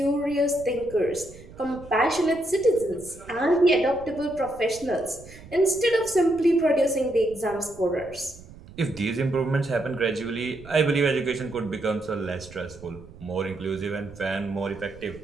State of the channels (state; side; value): noise; right; rumble, 19 dB below the sound